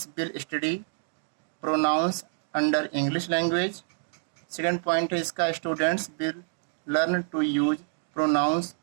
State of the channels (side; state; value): left; silent; 58 dB below the other